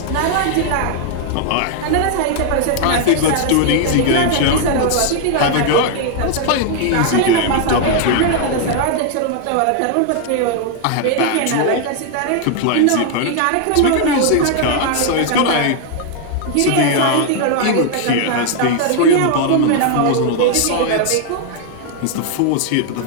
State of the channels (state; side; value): different; both; correlation 0.00